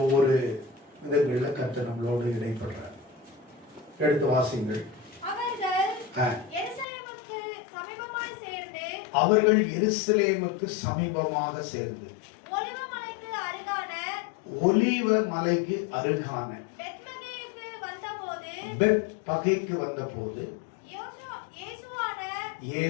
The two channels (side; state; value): right; drops out; at 6.9 s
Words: ஒவ்வொரு விதங்களில் கர்த்தர் நம்மளோடு இடைப்படுறார். எடுத்து வாசிங்கள். அவர்கள் எருசலேமுக்கு சமீபமாக சேர்ந்து ஒலிவ மலைக்கு அருகான பெத்பகேக்கு வந்தபோது